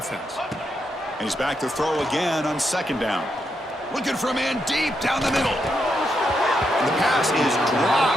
And he's back to throw again on second down. Looking for a man deep down the middle. And the pass is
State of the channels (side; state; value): both; normal; correlation 0.81